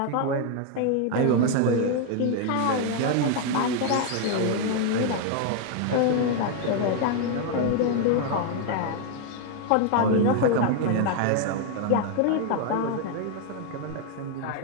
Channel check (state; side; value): different; both; correlation 0.00